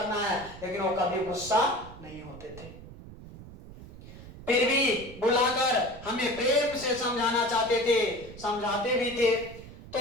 है, लेकिन वो कभी गुस्सा नहीं होते थे। फिर भी बुलाकर हमें प्रेम से समझाना चाहते थे, समझाते भी थे।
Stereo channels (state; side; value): noise; right; rumble, 16 dB below the sound